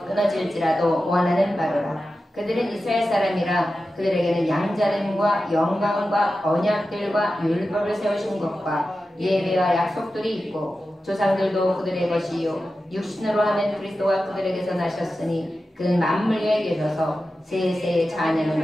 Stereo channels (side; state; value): both; normal; correlation 0.93